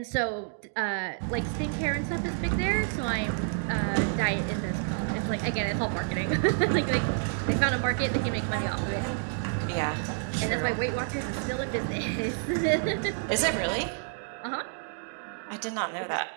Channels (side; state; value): left; silent; 59 dB below the other